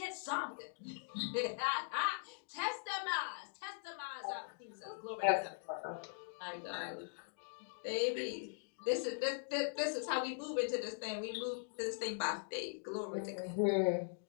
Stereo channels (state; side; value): silent; right; digital silence